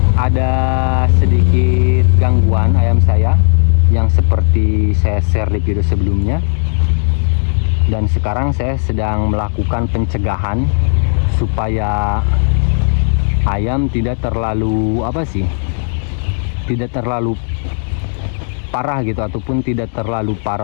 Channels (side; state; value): right; silent; digital silence